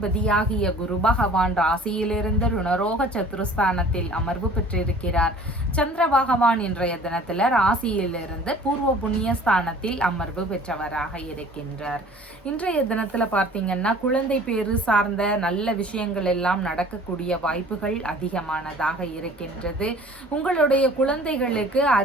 குரு பகவான் ராசியிலிருந்து ருணரோக சத்துருஸ்தானத்தில் அமர்வு பெற்றிருக்கிறார். சந்திர பகவான் இன்றைய தினத்துல ராசியிலிருந்து பூர்வ புண்ணிய ஸ்தானத்தில் அமர்வு பெற்றவராக இருக்கின்றார். இன்றைய தினத்துல பார்த்தீங்கன்னா குழந்தை பேரு சார்ந்த நல்ல விஷயங்கள் எல்லாம் நடக்கக்கூடிய வாய்ப்புகள் அதிகமானதாக இருக்கின்றது. உங்களுடைய குழந்தைகளுக்கு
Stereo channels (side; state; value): both; normal; correlation 0.48